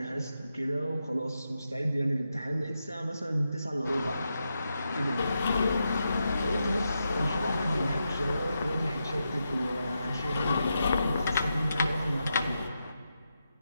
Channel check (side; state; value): both; inverted; correlation -0.86